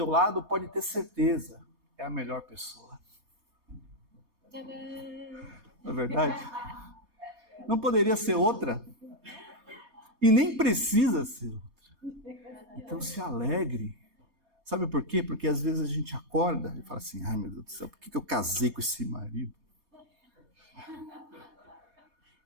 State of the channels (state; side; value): late; left; 3.3 ms